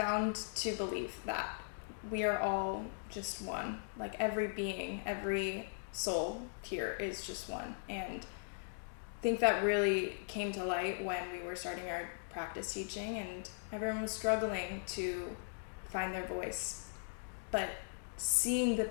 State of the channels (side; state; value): right; silent; digital silence